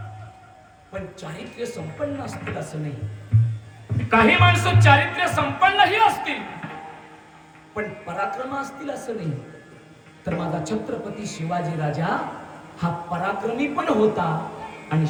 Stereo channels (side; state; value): both; identical; correlation 1.00